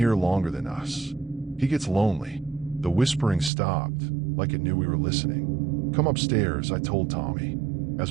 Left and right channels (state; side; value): drops out; left; at 3.5 s